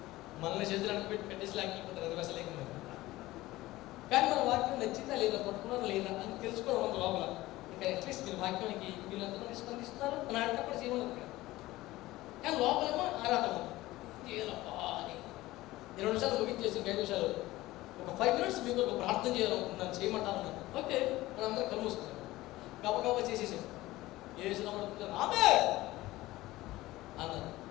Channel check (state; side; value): quieter; right; 17.9 dB